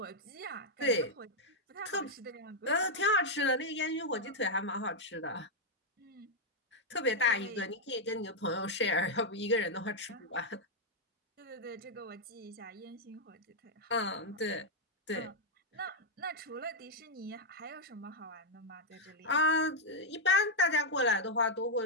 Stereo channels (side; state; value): both; normal; correlation -0.02